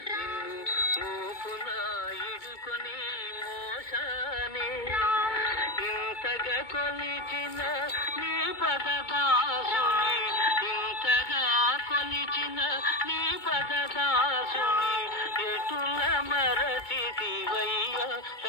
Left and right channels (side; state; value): right; late; 2.2 ms